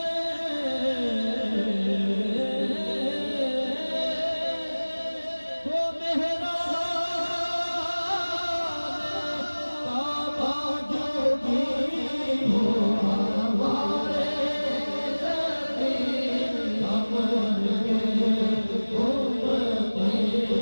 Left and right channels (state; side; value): inverted; both; correlation -1.00